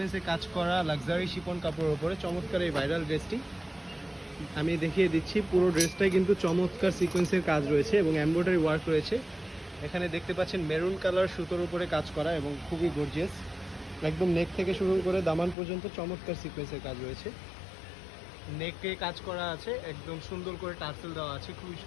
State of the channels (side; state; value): right; drops out; at 15.6 s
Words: কাজ করা লাক্সারি শিপন কাপড়ের উপরে চমৎকার এই ভাইরাল ড্রেসটি। আমি দেখিয়ে দিচ্ছি, পুরো ড্রেসটাই কিন্তু চমৎকার সিকোয়েন্সের কাজ রয়েছে এবং এমব্রয়ডারি ওয়ার্ক রয়েছে। এখানে দেখতে পাচ্ছেন মেরুন কালার সুতোর উপরে কাজ করা এবং খুবই গর্জিয়াস। একদম নেক থেকে শুরু করে দামান পর্যন্ত চমৎকার সিকোয়েন্সের কাজ রয়েছে। নেকে কাজ করা আছে, একদম সুন্দর করে টার্সেল দেওয়া আছে, খুবই